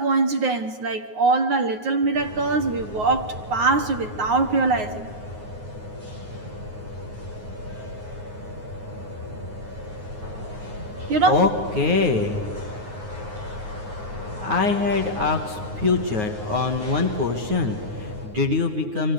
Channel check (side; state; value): left; late; 9.5 ms